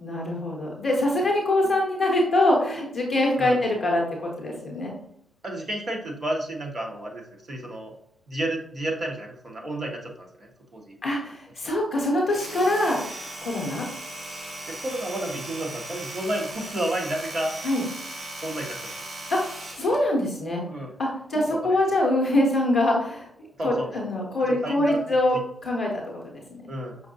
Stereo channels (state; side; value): normal; both; correlation 0.77